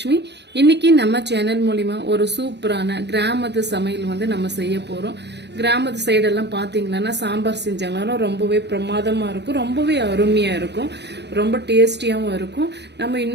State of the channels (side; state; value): left; late; 0.50 ms